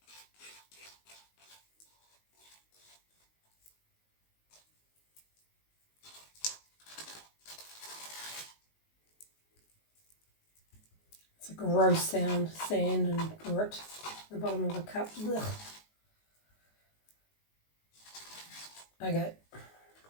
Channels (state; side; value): late; right; 19 ms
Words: It's a gross sound, sand and grit at the bottom of a cup. Ugh. Okay.